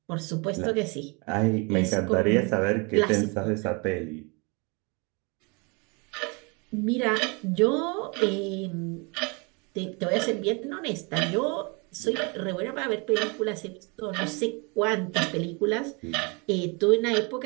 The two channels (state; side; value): quieter; left; 30.8 dB